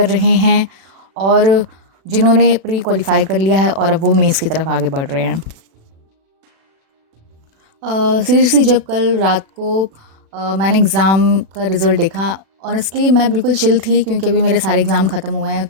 रहे हैं और जिन्होंने प्री क्वालिफाई कर लिया है और अब वो मेंस की तरफ आगे बढ़ रहे हैं। सीरियसली जब कल रात को मैंने एग्ज़ाम का रिज़ल्ट देखा, ऑनेस्टली मैं बिल्कुल चिल थी क्योंकि अभी मेरे सारे एग्ज़ाम ख़त्म हुए हैं,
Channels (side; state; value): left; late; 36 ms